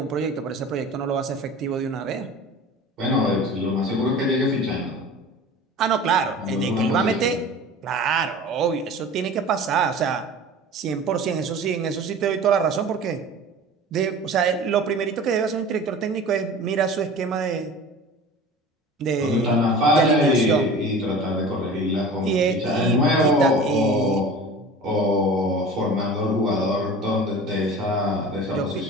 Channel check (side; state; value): both; normal; correlation 0.38